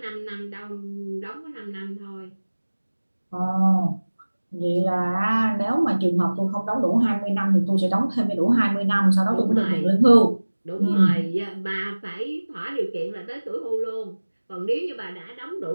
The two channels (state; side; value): inverted; both; correlation -1.00